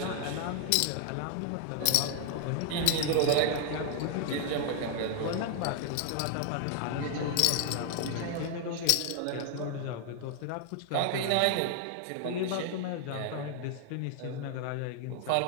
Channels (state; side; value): different; both; correlation 0.00